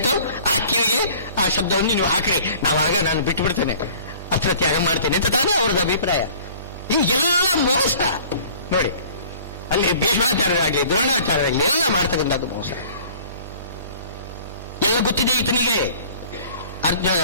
ಆ ಕಿವಿಗೆ ಆ ಶಬ್ದವನ್ನು ನೀವು ಹಾಕ್ರಿ, ನಾನು ಬಿಟ್ಟು ಬಿಡ್ತೇನೆ, ಅಸ್ತ್ರತ್ಯಾಗ ಮಾಡ್ತೇನೆ ಅಂತ ತಾನೇ ಅವರದ್ದು ಅಭಿಪ್ರಾಯ. ಈ ಎಲ್ಲ ಮೋಸ ನೋಡಿ, ಅಲ್ಲಿ ಭೀಷ್ಮಾಚಾರ್ಯರಾಗಲಿ ದ್ರೋಣಾಚಾರ್ಯರಾಗಲಿ ಎಲ್ಲ ಮಾಡ್ತಕ್ಕಂಥದ್ದು ಮೋಸ. ಎಲ್ಲ ಗೊತ್ತಿದೆ ಈತನಿಗೆ,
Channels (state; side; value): inverted; both; correlation -0.49